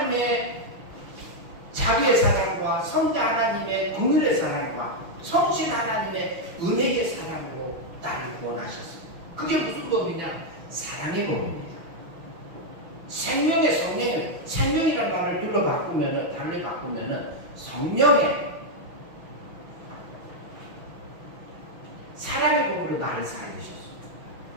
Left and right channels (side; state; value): left; late; 6.0 ms